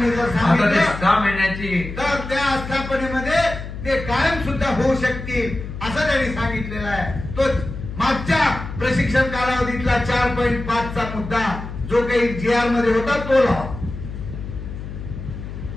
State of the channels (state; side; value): noise; left; hum, 9 dB below the sound